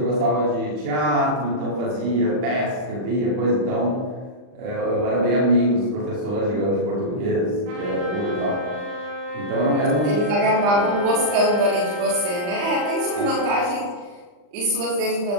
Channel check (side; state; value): left; late; 39 ms